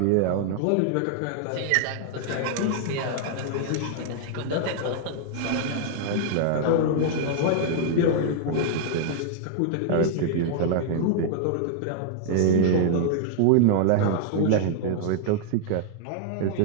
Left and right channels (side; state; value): both; different; correlation -0.01